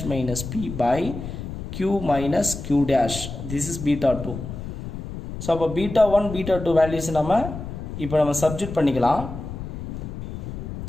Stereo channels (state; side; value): noise; left; rumble, 8 dB below the sound